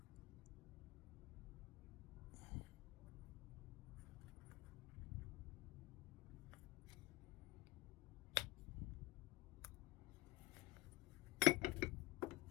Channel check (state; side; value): quieter; right; 20.3 dB